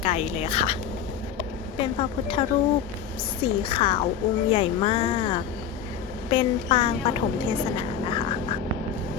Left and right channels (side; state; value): right; quieter; 8.1 dB